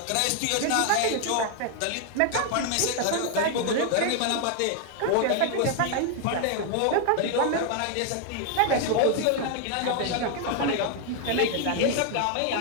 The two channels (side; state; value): both; different; correlation 0.00